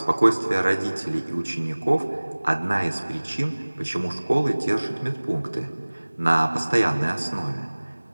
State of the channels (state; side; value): inverted; both; correlation -1.00